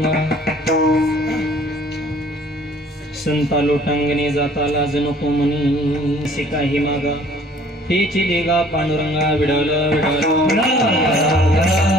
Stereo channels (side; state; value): both; normal; correlation 0.55